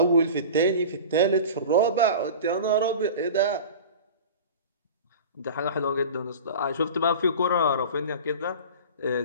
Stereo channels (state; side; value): inverted; both; correlation -0.35